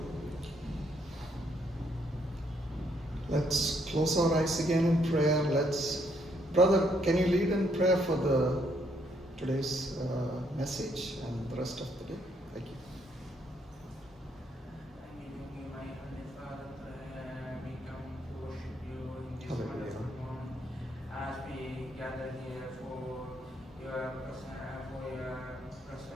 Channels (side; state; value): both; normal; correlation 0.71